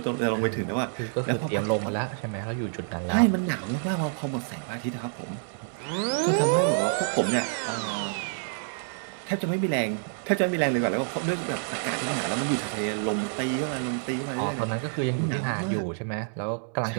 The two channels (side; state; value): left; silent; 59 dB below the other